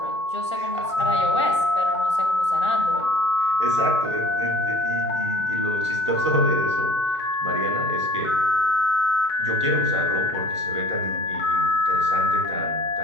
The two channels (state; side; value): normal; both; correlation 0.49